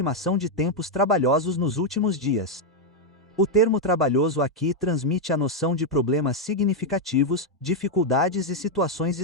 de tempos trabalhosos nos últimos dias. O termo trabalhoso aqui transmite a noção de problemas significativos, dificuldades e situações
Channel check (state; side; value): normal; both; correlation 0.01